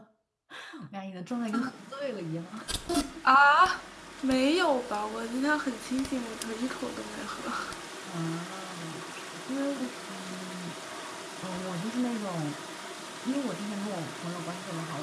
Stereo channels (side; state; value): both; identical; correlation 1.00